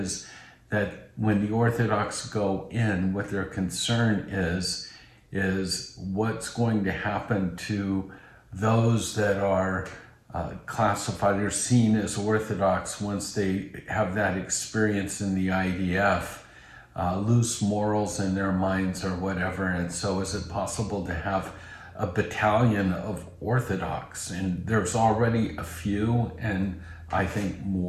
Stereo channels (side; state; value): both; identical; correlation 1.00